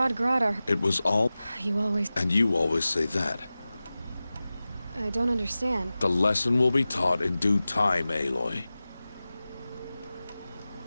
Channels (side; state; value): both; inverted; correlation -0.96